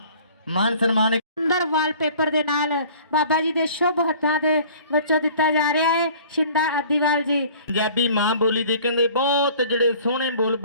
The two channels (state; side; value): inverted; both; correlation -0.49